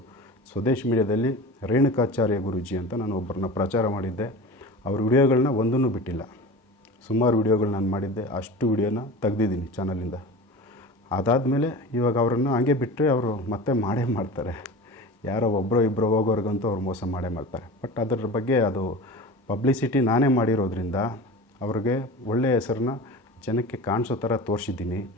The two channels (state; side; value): normal; both; correlation 0.33